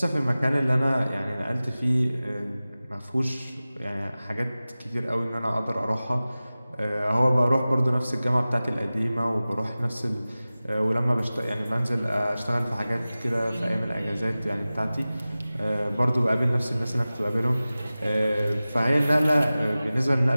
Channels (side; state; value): both; inverted; correlation -0.97